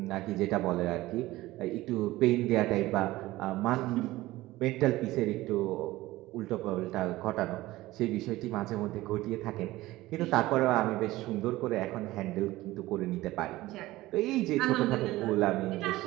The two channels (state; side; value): quieter; left; 17.8 dB